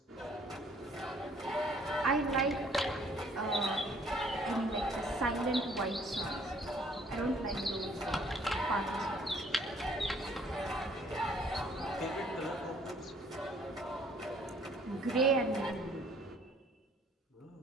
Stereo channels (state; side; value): normal; both; correlation 0.60